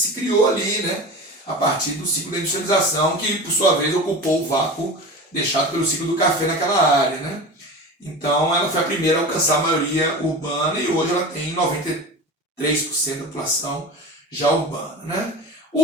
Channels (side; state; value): both; normal; correlation 0.31